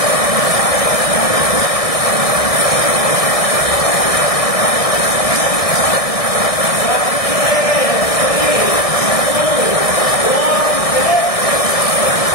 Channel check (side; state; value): right; late; 1.6 ms